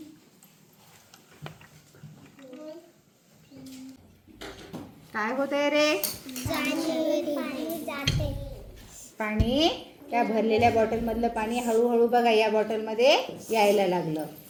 काय होतंय रे, पाणी त्या भरलेल्या बॉटलमधलं पाणी हळूहळू बघा या बॉटलमध्ये यायला लागलं.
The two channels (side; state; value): both; identical; correlation 1.00